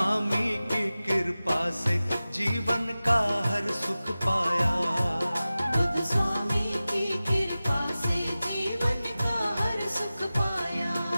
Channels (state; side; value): inverted; both; correlation -0.96